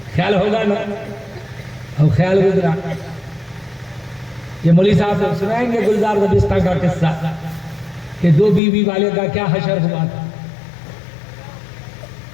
خیال ہوگا نا. اب خیال گزرا. یہ مولوی صاحب سے سنائیں گے گلزار دبستہ کا قصہ کہ 2 بیوی والے کا کیا حشر ہوا تھا.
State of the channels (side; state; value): right; drops out; at 8.6 s